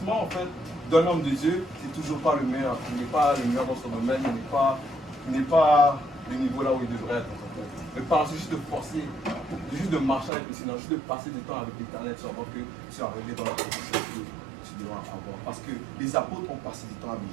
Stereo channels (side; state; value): left; drops out; at 10.3 s